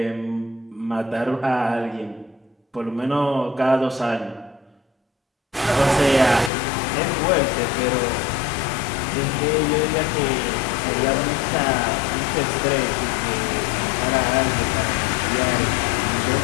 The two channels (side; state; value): right; drops out; at 6.5 s